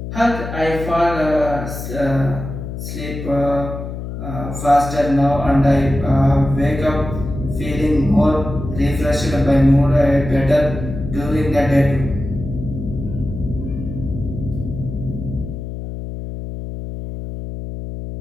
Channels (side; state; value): left; noise; hum, 8 dB below the sound